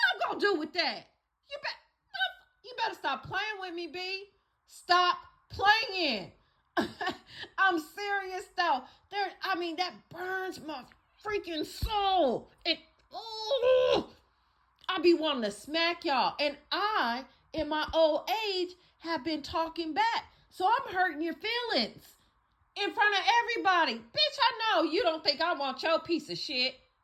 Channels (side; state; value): both; identical; correlation 1.00